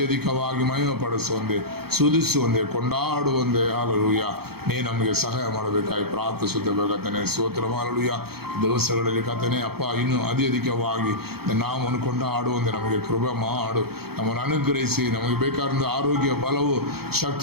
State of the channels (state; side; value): late; left; 0.96 ms